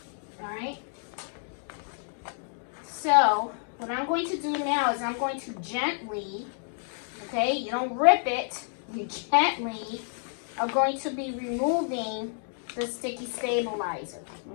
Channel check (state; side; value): silent; right; 58 dB below the other